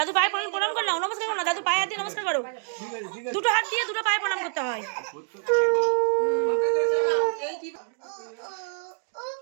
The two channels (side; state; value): left; silent; 58 dB below the other